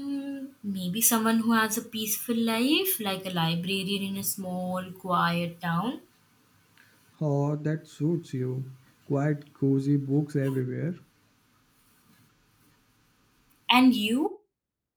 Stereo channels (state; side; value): identical; both; correlation 1.00